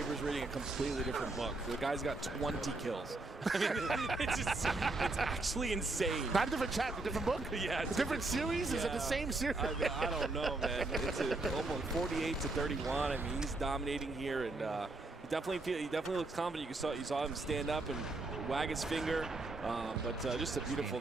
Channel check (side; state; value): left; quieter; 3.1 dB